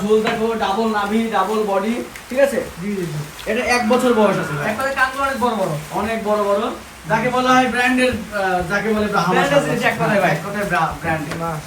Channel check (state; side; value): identical; both; correlation 1.00